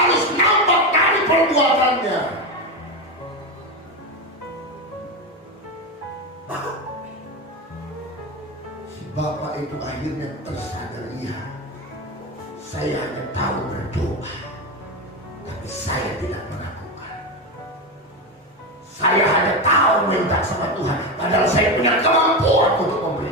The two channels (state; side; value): normal; both; correlation 0.15